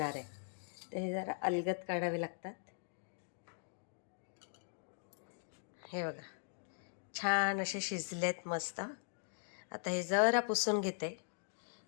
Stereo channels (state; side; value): silent; right; digital silence